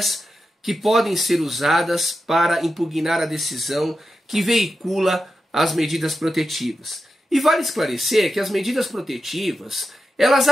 que podem ser usadas para impugnar a decisão que veicula as medidas protetivas. E vale esclarecer que as medidas protetivas, elas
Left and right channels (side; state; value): both; normal; correlation 0.90